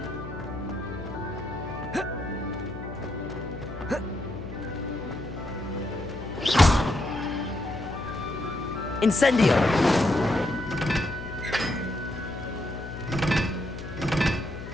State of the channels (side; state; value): left; noise; hum, 10 dB below the sound